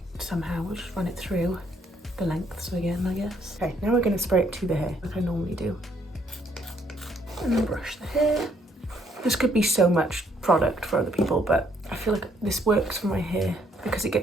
somehow. We'll just run it through the lengths again, I guess. Okay, now we're going to spray it to the hair, like I normally do. And then brush the hair. This could be so much product for other people, but I feel like this works for my hair because it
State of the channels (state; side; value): normal; both; correlation 0.68